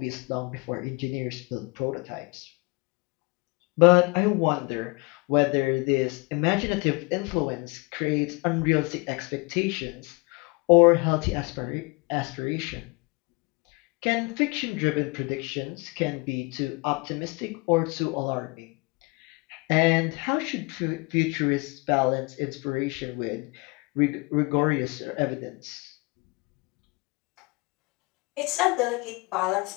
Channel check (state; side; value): quieter; right; 28.0 dB